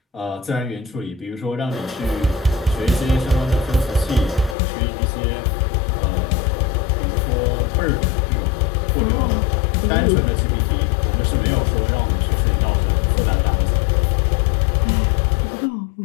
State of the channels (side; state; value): right; drops out; at 4.5 s